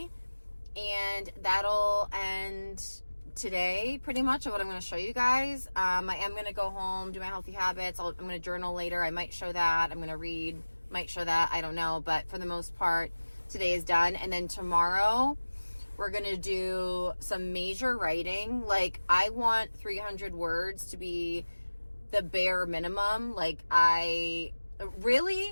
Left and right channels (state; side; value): inverted; both; correlation -1.00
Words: and that'll end today pretty much of what I'm going to show you guys. I am going to go home, do my healthy habits. I'm going to journal later. I might show that. I'm going to read, might show that. I don't know. But for the most part, today is done. And then tomorrow we're going to do some major writing. Like, I want 300 words to be the bare minimum. Like, I